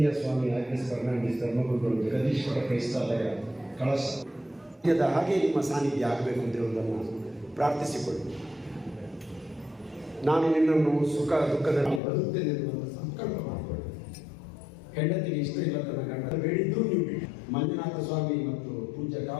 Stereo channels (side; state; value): right; drops out; at 12.0 s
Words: ಸ್ವಾಮಿ ಆಗ್ನೆಸ್ ಫರ್ನಾಂಡಿಸ್ ಧರ್ಮಗುರುಗಳು ಜಗದೀಶ್ವರ ಕ್ರೈಸ್ತಾಲಯ ಕಳಶ ಹಾಗೆ ನಿಮ್ಮ ಸಾನ್ನಿಧ್ಯ ಆಗಬೇಕು ಅಂತಿರುವುದನ್ನು ಪ್ರಾರ್ಥಿಸಿಕೊಳ್ಳಿ. ನಾನು ನಿನ್ನನ್ನು ಸುಖ ದುಃಖದಲ್ಲಿ ಬರುತ್ತೇನೆ ಎನ್ನುವಂಥ ಸಂಕಲ್ಪ ಮಾಡಿಕೊಳ್ಳಿ. ಹೆಂಡತಿಗೆ ಇಷ್ಟ ಇಲ್ಲ ತನ್ನ ಗಂಡ ಬೇಡಿದ್ದು ನೀವು ಬಿಡಿ. ಮಂಜುನಾಥ ಸ್ವಾಮಿ ಮತ್ತು ಪೂಜ್ಯ